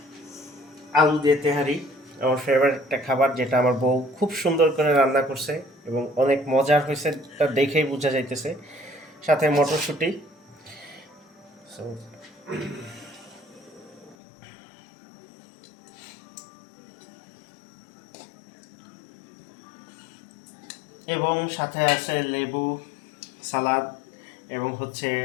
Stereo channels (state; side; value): drops out; right; at 14.2 s